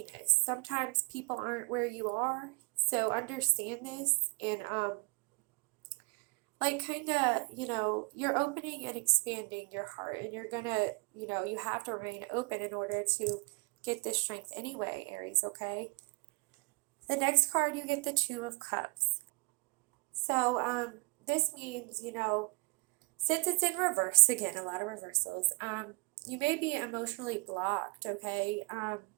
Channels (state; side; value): quieter; left; 29.6 dB